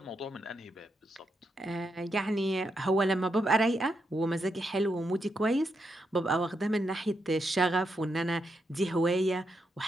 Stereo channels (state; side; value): normal; both; correlation 0.82